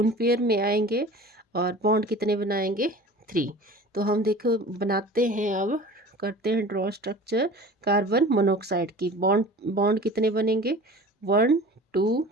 पेयर में आएंगे और बॉन्ड कितने बनाएंगे? 3। तो हम देखो बनाते हैं, अब करते हैं ड्रॉ स्ट्रक्चर कार्बन मोनोऑक्साइड की। बॉन्ड कितने बनेंगे? 1 2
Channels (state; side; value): normal; both; correlation 0.41